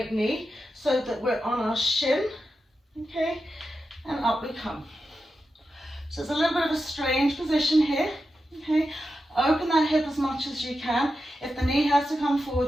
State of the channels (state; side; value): normal; both; correlation 0.90